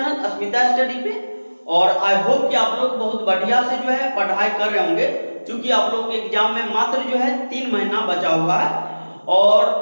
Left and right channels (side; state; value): both; inverted; correlation -1.00